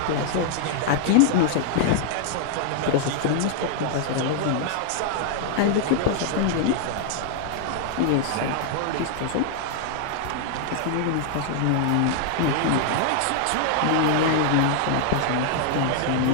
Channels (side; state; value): both; different; correlation -0.01